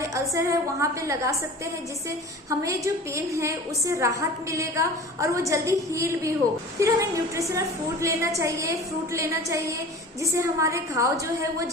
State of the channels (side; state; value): both; normal; correlation 0.39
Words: अल्सर है वहां पे लगा सकते हैं, जिससे हमें जो पेन है उससे राहत मिलेगा और वो जल्दी हील भी हो। फिर हमें न्यूट्रिशनल फूड लेना चाहिए, फ्रूट लेना चाहिए, जिससे हमारे घाव जो है वो